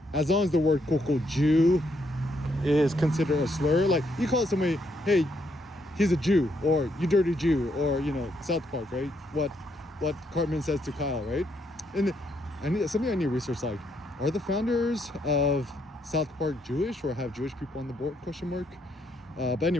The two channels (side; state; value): both; normal; correlation 0.75